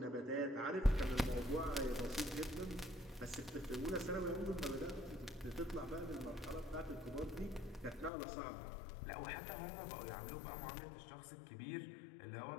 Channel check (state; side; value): drops out; right; at 8.1 s